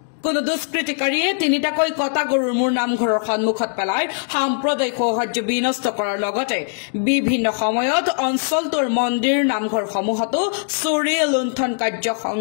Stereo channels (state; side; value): silent; right; 65 dB below the other